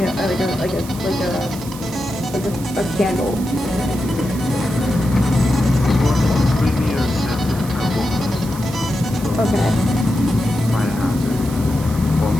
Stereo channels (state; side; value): noise; right; hiss, 15 dB below the sound